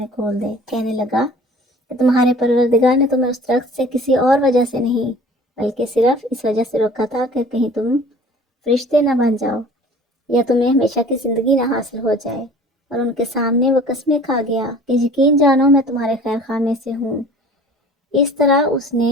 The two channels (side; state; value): both; normal; correlation 0.47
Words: کھول دے۔ کہنے لگا کہ تمہارے پروردگار نے تمہیں اس درخت سے کسی اور وجہ سے نہیں، بلکہ صرف اس وجہ سے روکا تھا کہ کہیں تم فرشتے نہ بن جاؤ، یا تمہیں ہمیشہ کی زندگی نہ حاصل ہو جائے۔ اور ان کے سامنے وہ قسمیں کھا گیا کہ یقین جانو میں تمہارے خیر خواہ میں سے ہوں۔ اس طرح اس نے